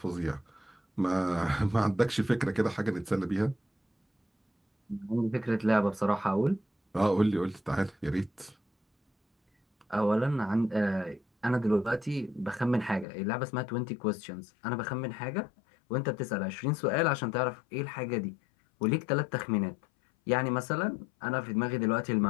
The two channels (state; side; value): drops out; right; at 13.1 s